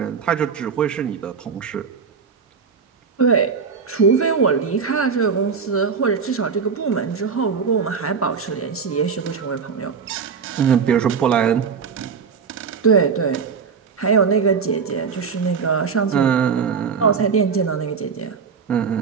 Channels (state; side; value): quieter; left; 5.9 dB